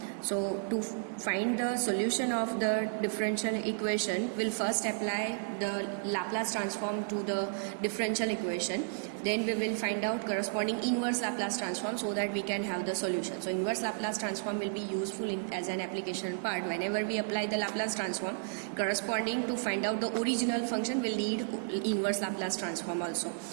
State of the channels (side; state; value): left; silent; digital silence